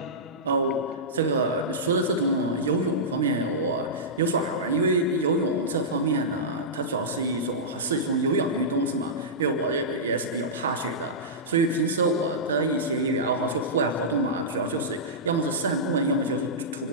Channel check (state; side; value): normal; both; correlation -0.15